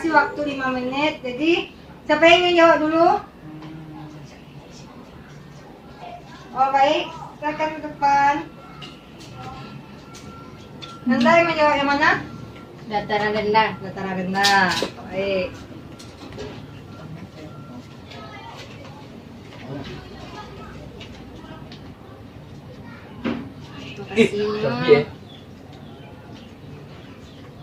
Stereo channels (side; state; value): both; identical; correlation 1.00